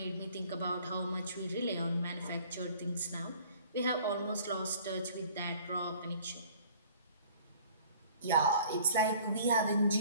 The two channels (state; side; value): inverted; both; correlation -0.52